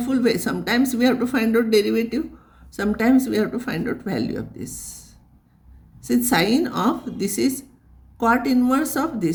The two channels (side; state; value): both; identical; correlation 1.00